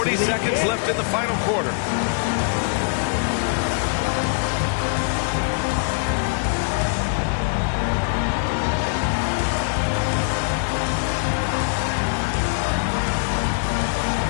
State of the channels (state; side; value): silent; right; digital silence